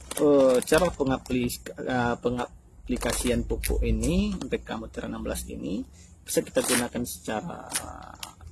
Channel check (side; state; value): both; identical; correlation 1.00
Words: cara pengaplikasian pupuk ini MPK Mutiara 16 ini bisa kita gunakan secara